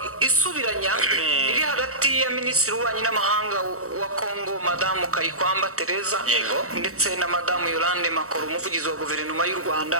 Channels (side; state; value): left; late; 0.64 ms